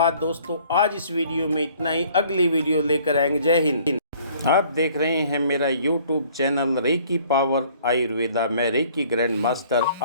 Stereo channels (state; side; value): inverted; both; correlation -0.57